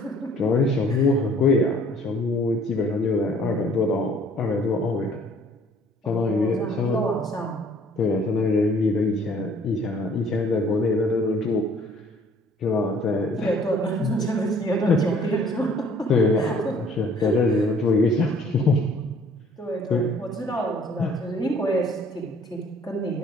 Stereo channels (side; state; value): both; normal; correlation 0.56